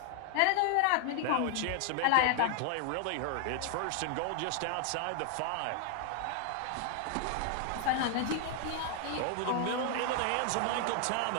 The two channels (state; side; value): different; both; correlation 0.00